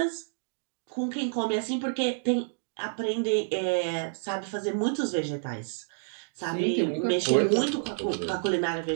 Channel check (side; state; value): left; silent; digital silence